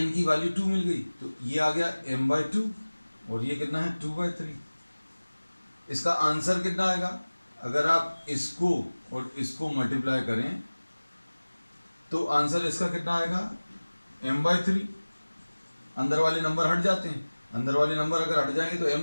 की वैल्यू 2 मिल गई तो ये आ गया m/2 और ये कितना है 2/3। इसका आंसर कितना आएगा, अगर आप इसको और इसको मल्टीप्लाई करें तो आंसर इसका कितना आएगा m/3। अंदर वाले नंबर हट जाते हैं, अंदर वाले नंबर अगर हट जाएंगे तो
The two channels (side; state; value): both; inverted; correlation -1.00